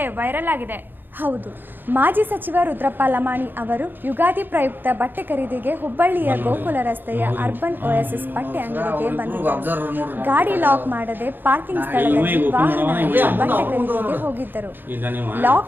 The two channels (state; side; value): late; left; 0.094 ms